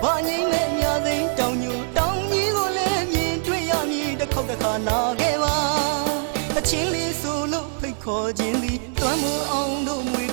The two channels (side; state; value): left; silent; 57 dB below the other